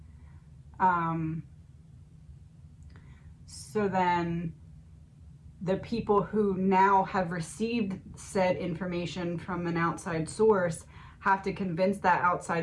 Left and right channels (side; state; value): both; identical; correlation 1.00